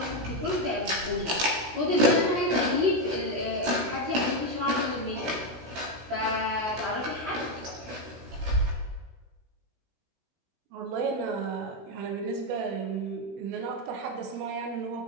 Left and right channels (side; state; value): left; late; 16 ms